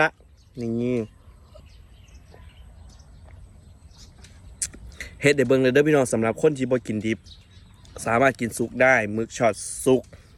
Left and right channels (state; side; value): identical; both; correlation 1.00